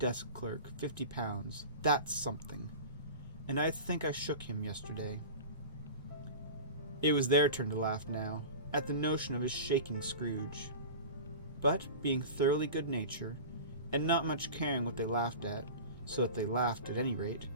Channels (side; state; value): both; inverted; correlation -0.33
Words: clerk £50, that's something. And I think I shook him yesterday. It was their turn to laugh now, at the notion of his shaking Scrooge. But, being thoroughly good-natured, and not much caring what they laughed at, so that they laughed at any rate,